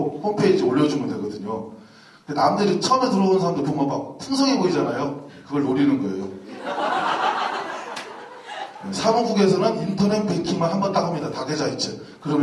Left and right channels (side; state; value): both; identical; correlation 1.00